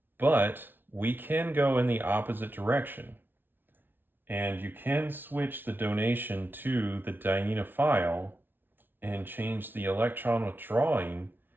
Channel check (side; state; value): left; late; 0.097 ms